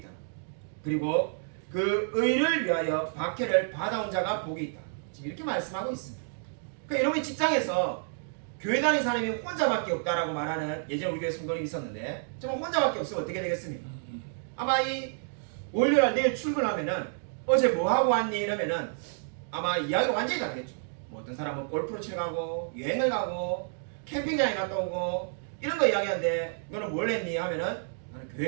그리고 그 의를 위하여 박해를 받아온 자가 복이 있다. 지금 이렇게 말씀하고 있습니다. 그러니까 여러분이 직장에서 교회 다니는 사람이 혼자밖에 없다라고 말하는 예전 우리 교회 성도님이 있었는데 정말 혼자밖에 없으면 어떻게 되겠습니까? 아마 이 월요일 내일 출근하면은 어제 뭐 하고 왔니? 이러면은 아마 이야기가 완전히 다르겠죠. 뭐 어떤 사람은 골프를 치러 가고 여행을 가고 캠핑장에 갔다 오고 이런 거 이야기하는데 너는 뭘 했니? 하면은 나는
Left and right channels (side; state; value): left; silent; digital silence